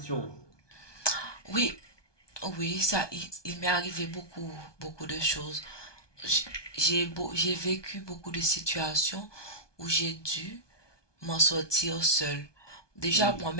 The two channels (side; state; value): right; late; 1.2 ms